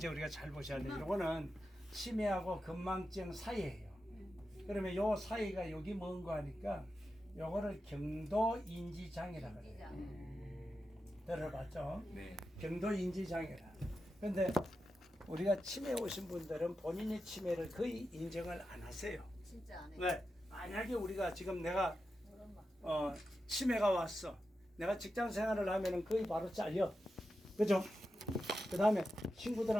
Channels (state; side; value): normal; both; correlation 0.90